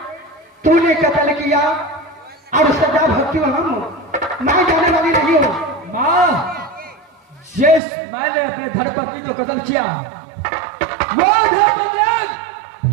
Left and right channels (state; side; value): drops out; left; at 7.8 s